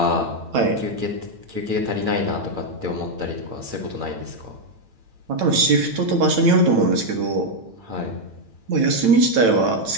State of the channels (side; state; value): left; late; 8.9 ms